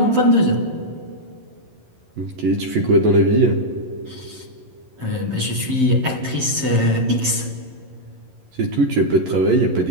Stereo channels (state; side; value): late; left; 11 ms